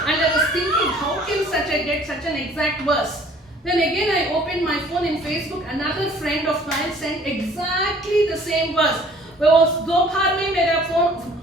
I was thinking, how can get such an exact verse? Then again I opened my phone in Facebook. Another friend of mine sent exactly the same verse. वो दोपहर में मेरा phone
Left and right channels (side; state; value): both; normal; correlation 0.54